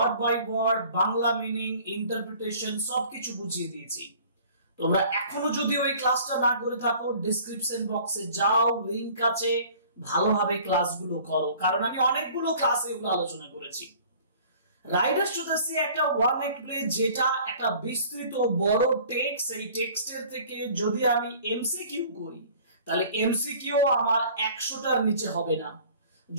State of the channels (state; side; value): inverted; both; correlation -0.50